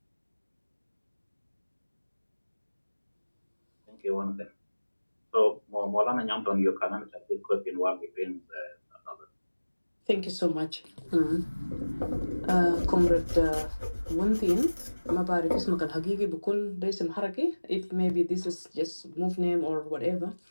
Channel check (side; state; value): both; inverted; correlation -1.00